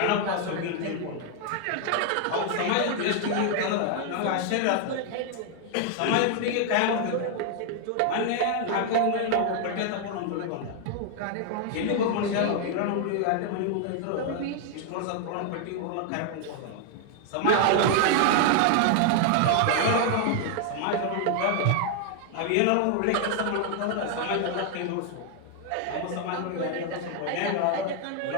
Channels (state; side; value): different; both; correlation 0.00